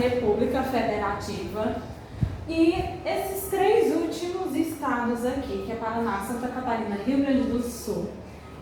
Federativa. E esses 3 últimos estados aqui, que é Paraná, Santa Catarina e Rio Grande do Sul,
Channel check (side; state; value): both; identical; correlation 1.00